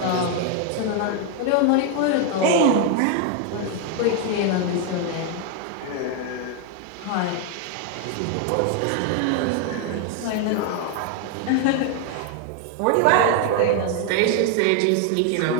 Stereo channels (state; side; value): different; both; correlation 0.01